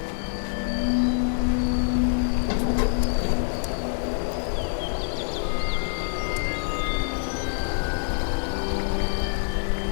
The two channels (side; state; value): right; silent; digital silence